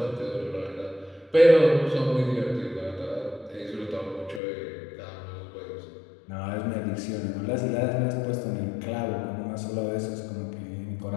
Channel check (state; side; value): drops out; right; at 4.4 s